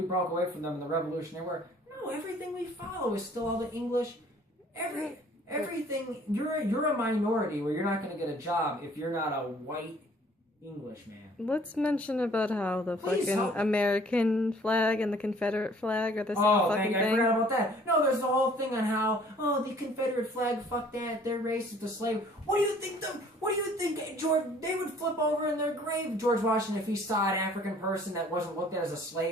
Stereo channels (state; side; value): normal; both; correlation 0.55